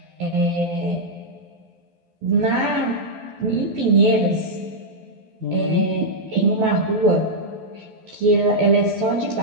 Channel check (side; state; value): left; late; 12 ms